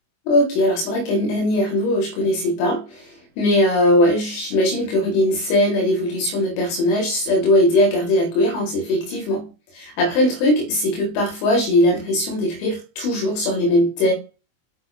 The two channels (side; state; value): right; late; 24 ms